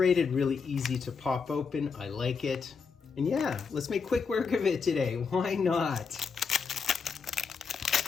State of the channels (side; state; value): right; quieter; 5.5 dB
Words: really easy to pop open. I like it. And yeah, let's make quick work of it today. Why not?